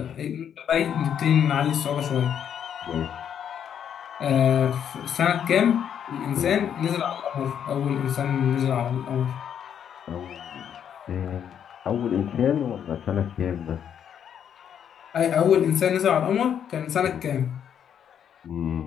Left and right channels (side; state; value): right; quieter; 8.7 dB